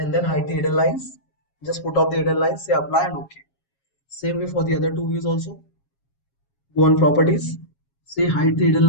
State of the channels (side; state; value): right; late; 7.3 ms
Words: then hide the hidden lines. Just put off the hidden lines, say apply and OK. Same way for the other two views also. Go on properties, say hide the hidden